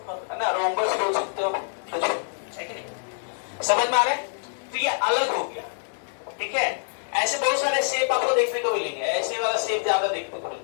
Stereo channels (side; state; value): right; silent; digital silence